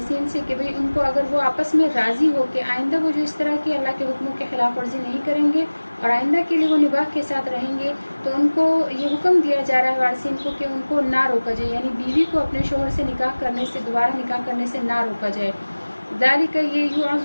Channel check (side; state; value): both; inverted; correlation -1.00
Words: से कि भाई उनको अगर वो आपस में राज़ी हो कि आइंदा वो जो इस तरह की अल्लाह के हुक्मों के खिलाफ वर्जी नहीं करेंगे और आइंदा के लिए वो निबाह के साथ रहेंगे, तो उनको ये हुक्म दिया जा रहा है वारिसीन को कि उनको ना रोका जाए, यानी बीवी को अपने शोहर से निकाह करने से, दोबारा निकाह करने से ना रोका जाए। ज़ालिका, ये